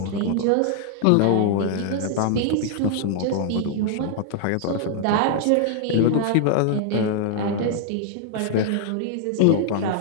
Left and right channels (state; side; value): different; both; correlation -0.01